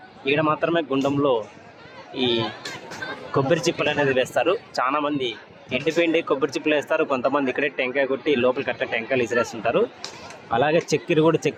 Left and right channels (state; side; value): identical; both; correlation 1.00